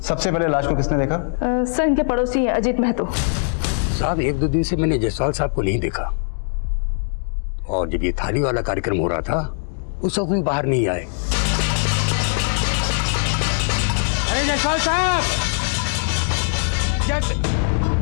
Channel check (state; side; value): silent; right; digital silence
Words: सबसे पहले लाश को किसने देखा? सर, इनके पड़ोसी अजीत महतो। साहब, 1-2 दिन से मैंने जायसवाल साहब को नहीं देखा, और जब ये थाली वाला कार्यक्रम हो रहा था उस वक्त भी बाहर नहीं आए। अरे जायसवाल साहब,